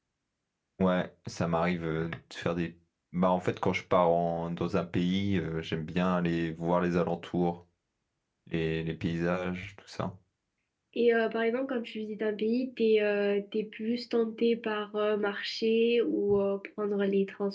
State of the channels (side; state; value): both; identical; correlation 1.00